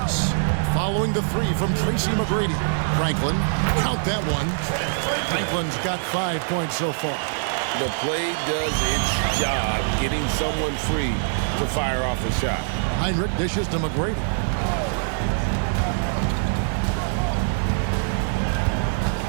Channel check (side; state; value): left; silent; digital silence